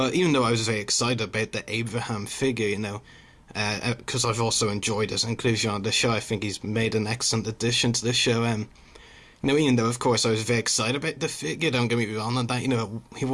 even though I was very excited about the Abraham figure, because I've also enjoyed his inclusion on the show, I think he's made an excellent addition to the show. Even though, of course, I was very excited about the figure, don't get me wrong on that, he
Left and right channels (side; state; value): both; identical; correlation 1.00